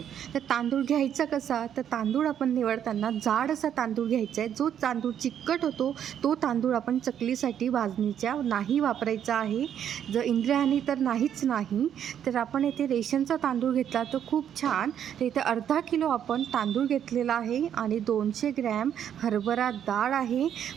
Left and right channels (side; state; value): left; quieter; 9.4 dB